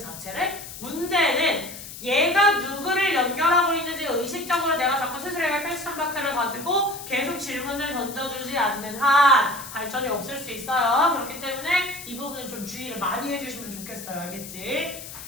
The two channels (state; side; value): noise; left; hiss, 12 dB below the sound